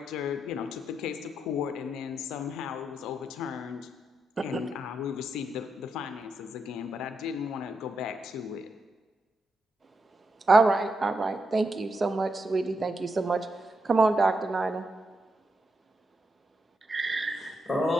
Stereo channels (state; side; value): normal; both; correlation 0.83